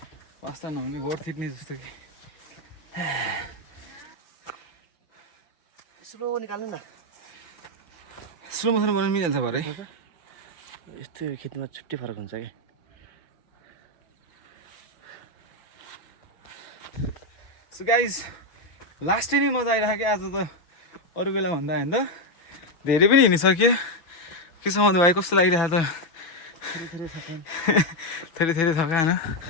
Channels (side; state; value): right; late; 5.9 ms